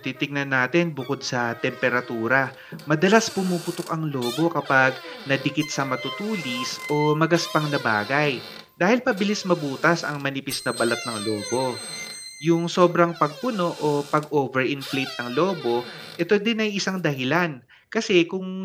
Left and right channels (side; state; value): both; identical; correlation 1.00